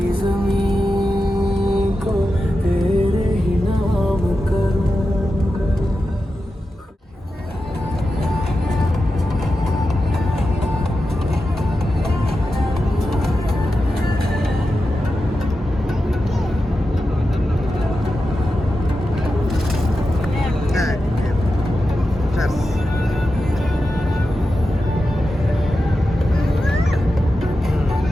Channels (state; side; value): normal; both; correlation 0.91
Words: जमीन को तेरे ही नाम करूं